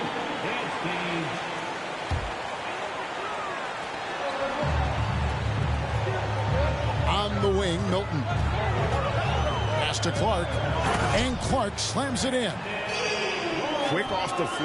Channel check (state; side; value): identical; both; correlation 1.00